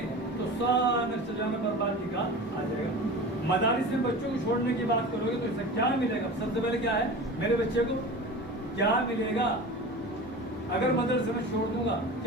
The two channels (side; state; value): both; normal; correlation 0.34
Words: تو سارا سجانا بربادی کا آ جائے گا. مدارس میں بچوں کو چھوڑنے کی بات کرو گے تو اس سے کیا ملے گا؟ سب سے پہلے کیا ہے؟ میرے بچے کو کیا ملے گا؟ اگر مدرسے میں چھوڑ دوں گا